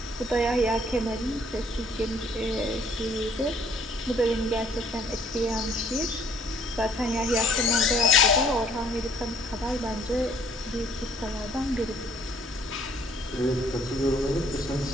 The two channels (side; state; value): both; normal; correlation 0.60